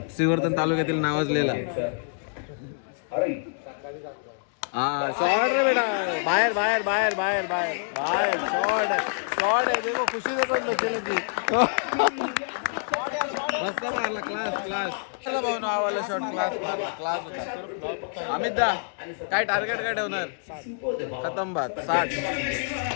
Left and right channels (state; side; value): silent; right; digital silence